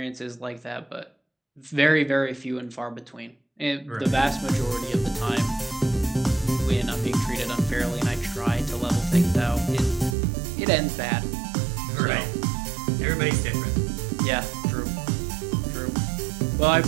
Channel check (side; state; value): left; drops out; at 10.2 s